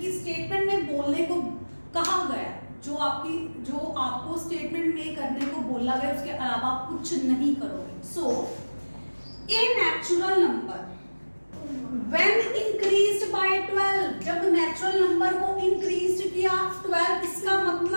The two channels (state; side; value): inverted; both; correlation -1.00